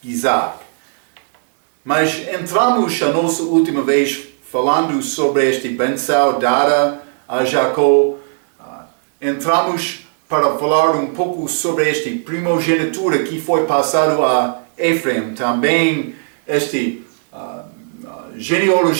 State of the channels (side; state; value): left; silent; digital silence